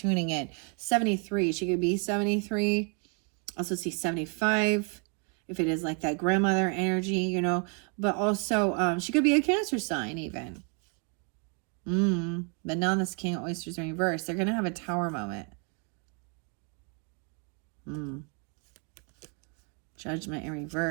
in. 73, she could be 73. Also see 75, if it is like that grandmother energy, you know. But also, she could be a Cancer sign even. But now this King of Oysters in reverse. They're going to have a Tower moment. Judgment in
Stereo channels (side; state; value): left; quieter; 37.8 dB